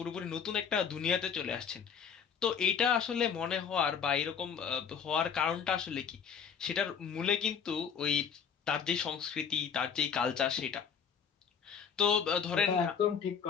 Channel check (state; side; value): quieter; right; 7.1 dB